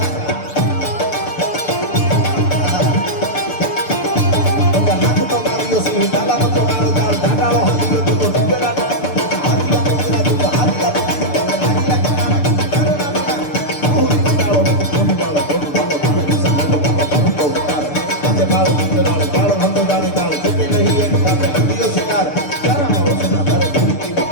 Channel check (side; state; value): right; late; 6.8 ms